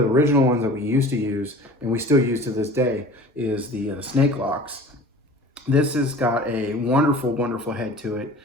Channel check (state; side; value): normal; both; correlation 0.42